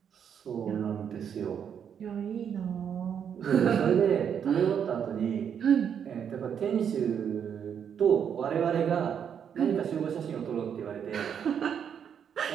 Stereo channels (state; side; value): quieter; left; 8.0 dB